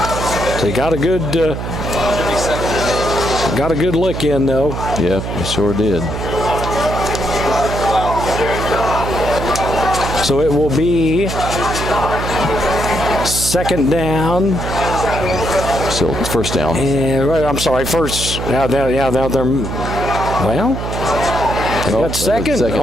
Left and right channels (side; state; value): right; noise; hum, 5 dB below the sound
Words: So he got a good look in, though. Yep, he sure did. So it will be second down. So first down. I'm sorry, first. Now they're well. They got second